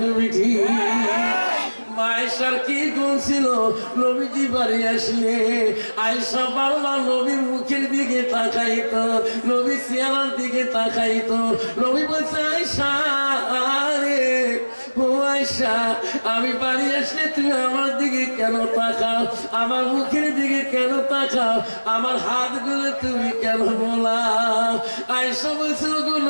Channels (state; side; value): inverted; both; correlation -1.00